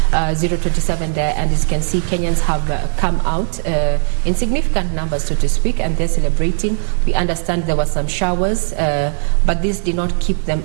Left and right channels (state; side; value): silent; left; digital silence